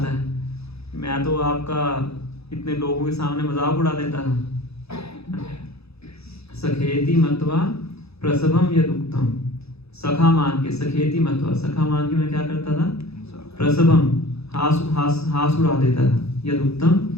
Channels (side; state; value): right; late; 0.79 ms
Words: है, मैं तो आपका इतने लोगों के सामने मजाक उड़ा देता था। सखेति मत्वा प्रसभम यदुक्तम, सखा मान के, सखेति मत्वा, सखा मान के मैं क्या करता था, प्रसभम, हास उड़ा देता था, यदुक्तम,